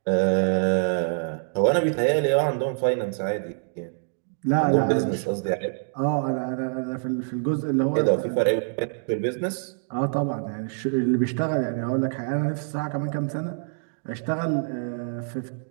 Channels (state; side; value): silent; left; digital silence